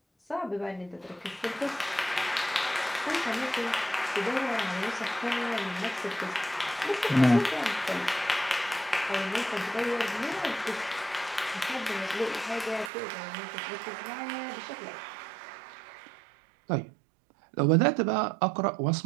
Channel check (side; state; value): left; drops out; at 12.9 s